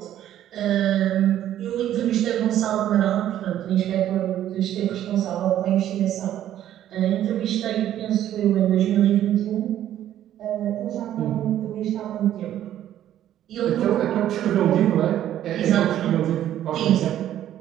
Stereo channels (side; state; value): left; quieter; 11.8 dB